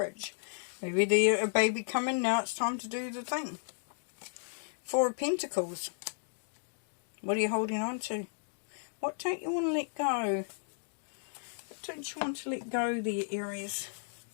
Maybe there's a baby coming. Now it's time to do the thing. Four of Pentacles. What are you holding on to? What don't you want to let go? What don't you want to let go there, Aries?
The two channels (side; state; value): right; silent; digital silence